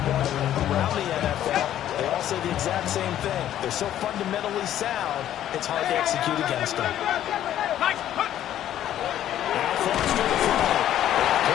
around the NFL, they all say the exact same thing. They're so fundamentally sound, it's hard to execute against them.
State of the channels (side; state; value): right; quieter; 11.7 dB